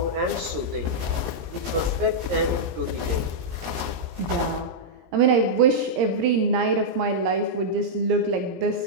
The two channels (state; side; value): late; left; 17 ms